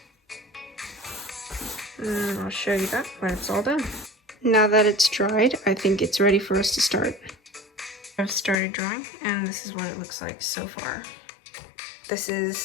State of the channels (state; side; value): drops out; right; at 8.6 s